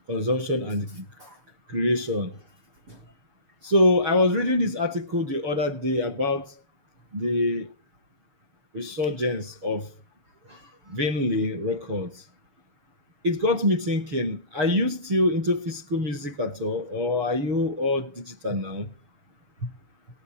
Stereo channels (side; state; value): left; late; 7.0 ms